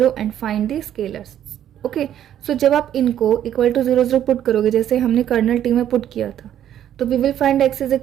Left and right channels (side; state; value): left; quieter; 10.8 dB